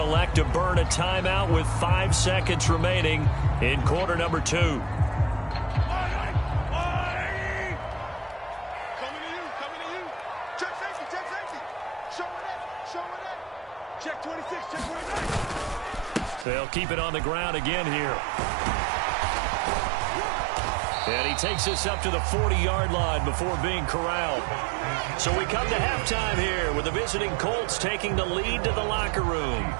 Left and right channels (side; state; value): left; drops out; at 16.4 s